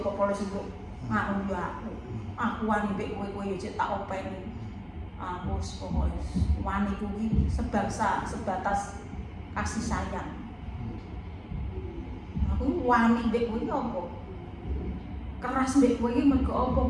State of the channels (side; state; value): both; identical; correlation 1.00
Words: polisi kok ngono yo aku. Aku wani mbek kowe yo cek tak openi. Aku wis pokoke wani kuwi sebangsa sebatas kasih sayang. Aku wani mbek kowe apa? Keras mbek kowe iki mergo apa?